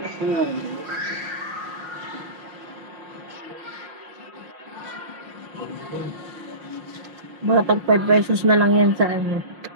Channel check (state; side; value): late; left; 5.5 ms